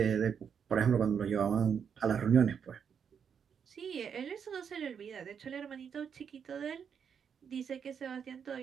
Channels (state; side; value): quieter; left; 7.2 dB